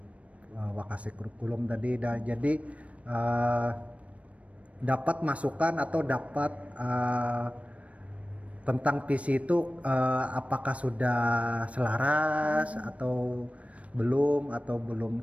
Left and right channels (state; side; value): late; left; 0.064 ms